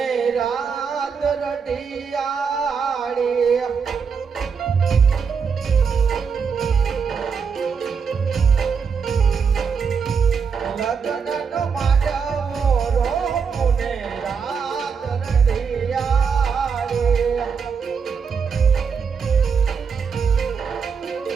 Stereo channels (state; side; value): quieter; left; 6.0 dB